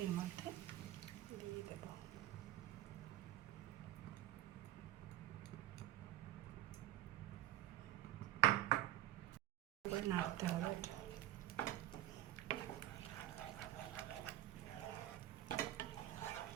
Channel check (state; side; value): quieter; left; 14.3 dB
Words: এর মধ্যে দিয়ে দেব। এবার নাড়তে হবে এটা।